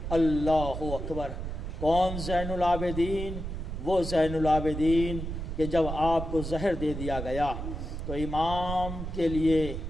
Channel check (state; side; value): noise; right; rumble, 6 dB below the sound